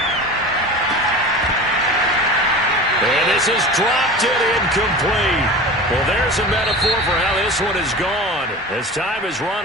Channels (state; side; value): normal; both; correlation 0.34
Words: And this is dropped it incomplete. Well, there's a metaphor for how this one is gone as time has run